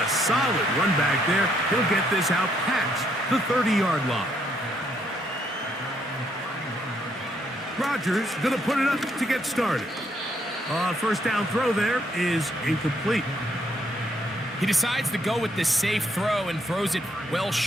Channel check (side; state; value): both; normal; correlation 0.71